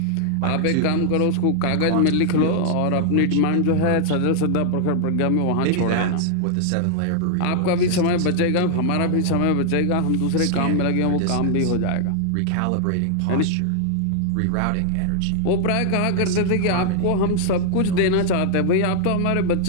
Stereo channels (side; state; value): both; different; correlation 0.00